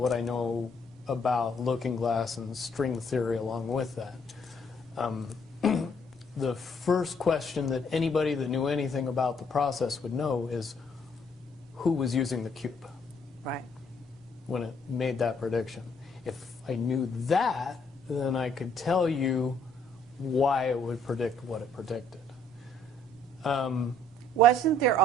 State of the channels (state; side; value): normal; both; correlation 0.65